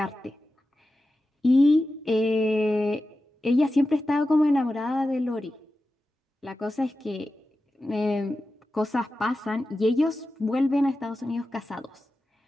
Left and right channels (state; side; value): normal; both; correlation 0.93